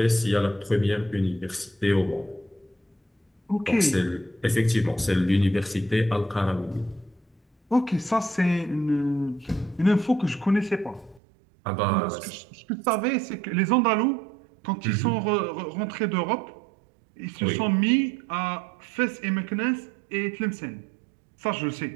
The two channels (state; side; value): drops out; left; at 11.2 s